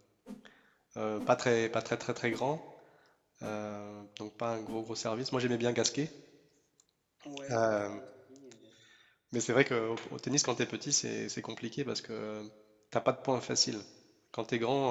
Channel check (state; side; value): identical; both; correlation 1.00